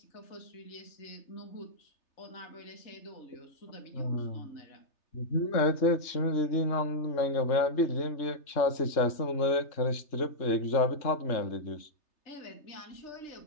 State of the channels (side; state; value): right; late; 3.3 ms